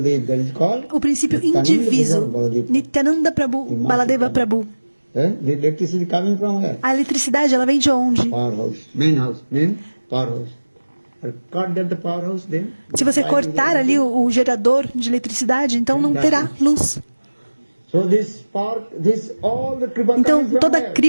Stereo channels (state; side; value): inverted; both; correlation -1.00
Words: o princípio indiviso, Nityananda Prabhu, Baladeva Prabhu. A eletricidade, ela vem de onde? Se você cortar ali o gerador de eletricidade, então não terá luz. Então toda a